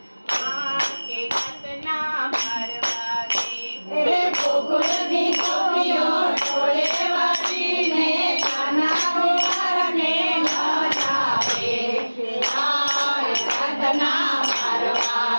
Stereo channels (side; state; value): both; inverted; correlation -1.00